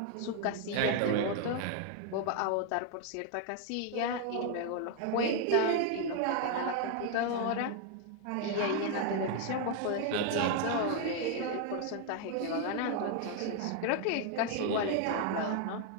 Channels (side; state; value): both; different; correlation 0.00